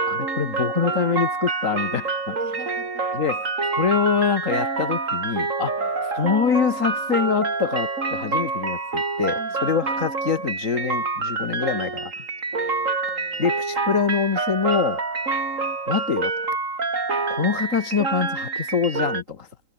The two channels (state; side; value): late; left; 3.8 ms